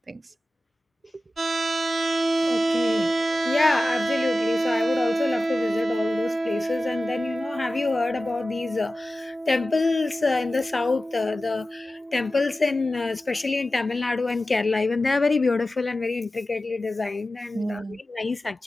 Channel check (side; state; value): both; normal; correlation 0.95